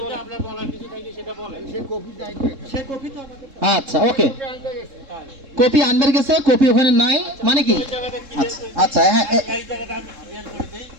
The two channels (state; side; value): late; left; 3.7 ms